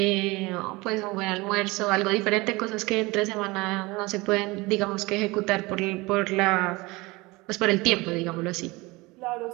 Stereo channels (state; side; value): quieter; left; 23.1 dB